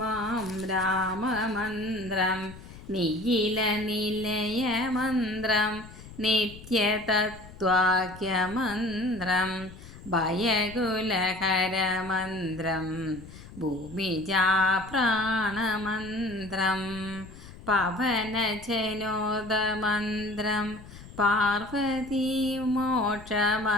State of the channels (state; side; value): noise; left; rumble, 17 dB below the sound